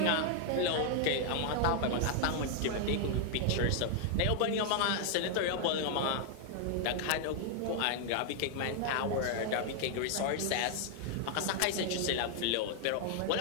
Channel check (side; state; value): both; different; correlation 0.00